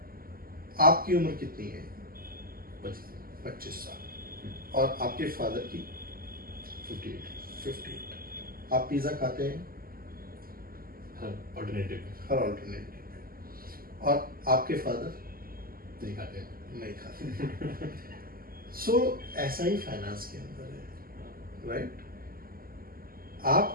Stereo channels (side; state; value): left; late; 0.42 ms